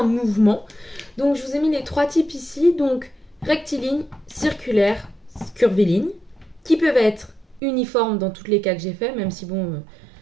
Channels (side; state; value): left; drops out; at 7.6 s